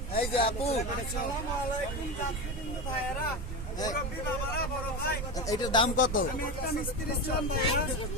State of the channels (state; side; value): noise; right; rumble, 5 dB below the sound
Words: এই যে আপু, এইটার দাম কত?